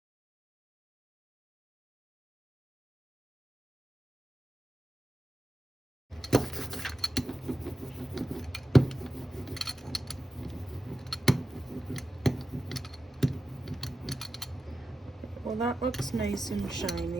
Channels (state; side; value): normal; both; correlation 0.93